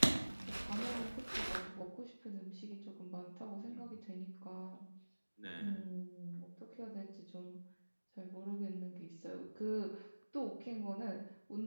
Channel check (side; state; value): both; inverted; correlation -1.00